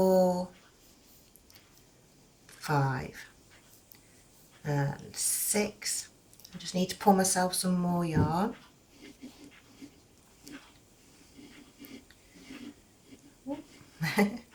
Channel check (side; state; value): both; identical; correlation 1.00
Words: 5 and 6. I just need to pull myself some more yarn.